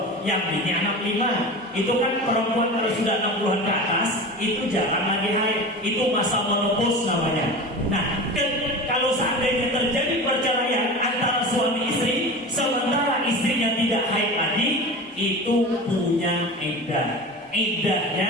yang bini anak 5. Itu kan perempuan kalau sudah 60-an ke atas, itu jarang lagi haid. Itu masa menopause namanya. Nah, kalau seandainya terjadi perceraian antara suami istri, sementara istrinya tidak haid lagi, itu punya iddah.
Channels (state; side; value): normal; both; correlation 0.32